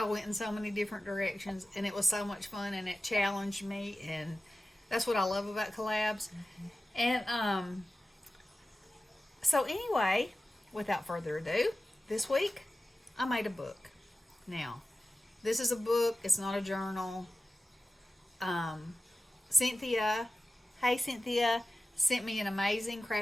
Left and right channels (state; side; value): normal; both; correlation 0.95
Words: went in so many different directions, and it was so much fun, and it challenged me, and that's what I love about collabs. And so anyway, without further ado, this week I made a book. Now, this is a book. It's not a journal. Cynthia, hey Cynthia, sent me an amazing